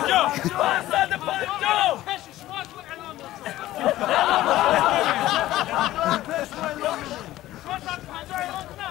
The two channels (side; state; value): right; quieter; 15.3 dB